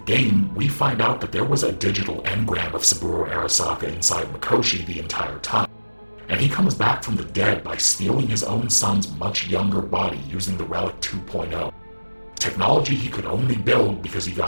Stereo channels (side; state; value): both; inverted; correlation -1.00